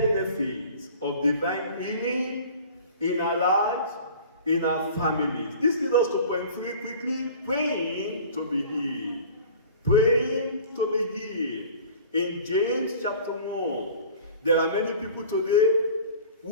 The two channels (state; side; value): inverted; both; correlation -0.43